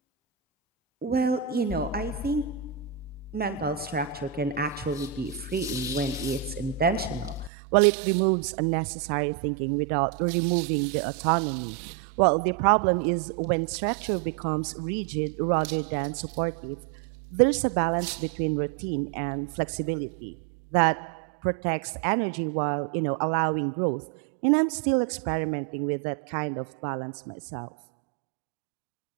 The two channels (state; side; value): drops out; left; at 7.5 s